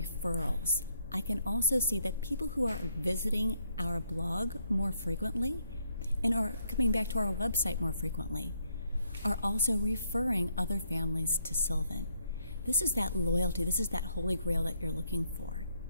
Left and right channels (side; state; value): both; inverted; correlation -0.74